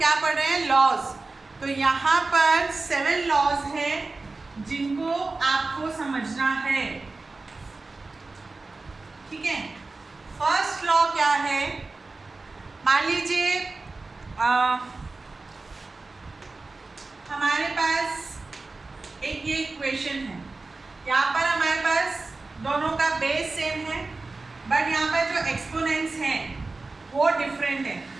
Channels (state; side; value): quieter; left; 3.6 dB